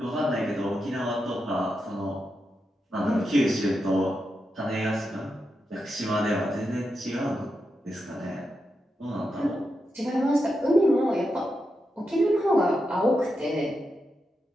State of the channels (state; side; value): normal; both; correlation 0.87